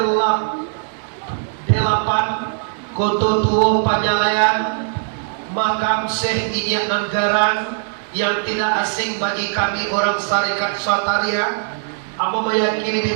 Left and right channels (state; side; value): silent; left; digital silence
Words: 8, Koto Tuo Panjalayan, makam Syekh Ijak Anggaran yang tidak asing bagi kami orang Syarikat Sataria. Apa meyakini